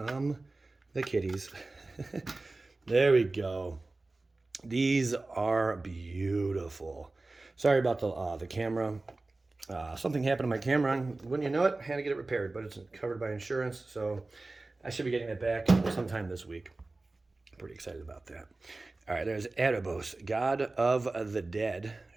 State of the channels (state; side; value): quieter; left; 3.2 dB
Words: the kitties. There we go. These are beautiful. Sorry about the camera. Something happened to my camera, and wouldn't you know it, I had to get it repaired, but it's covered by insurance, so I should be getting it back sometime this week. I'm pretty excited about that. All right, there's Erebos, God of the Dead,